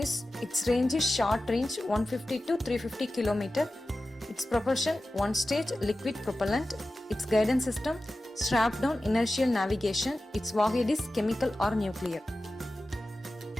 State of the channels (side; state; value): both; normal; correlation 0.94